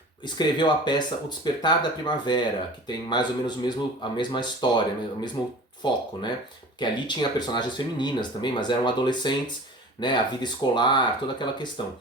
escreveu a peça O Despertar da Primavera, que tem mais ou menos a mesma história, o mesmo foco, né? Que ali tinha personagens femininas também, mas eram adolescentes, né? A vida escolar, toda aquela questão.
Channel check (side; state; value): both; normal; correlation 0.40